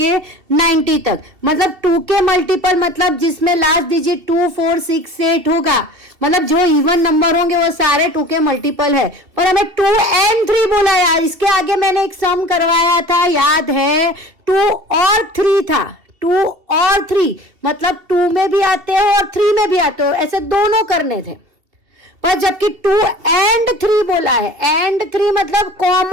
90 तक. मतलब 2 के मल्टीपल मतलब जिसमें लास्ट डिजिट 2 4 6 8 होगा. मतलब जो इवन नंबर होंगे वो सारे 2 के मल्टीपल है. पर हमें 2 and 3 बोला यार. इसके आगे मैंने एक सम करवाया था, याद है, 2 और 3 था. 2 और 3 मतलब 2 में भी आते हो और 3 में भी आते हो, ऐसे दोनों करने थे. पर जबकि 2 and 3 बोला है, and 3 मतलब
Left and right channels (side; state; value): left; late; 2.7 ms